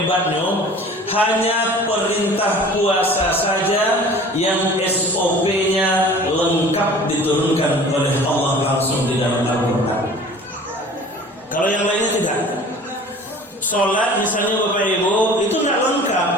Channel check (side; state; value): both; normal; correlation 0.44